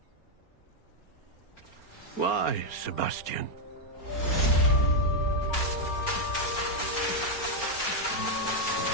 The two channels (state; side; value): late; right; 4.4 ms